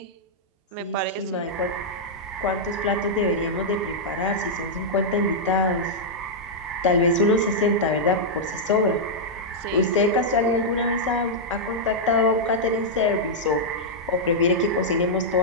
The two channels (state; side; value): normal; both; correlation -0.07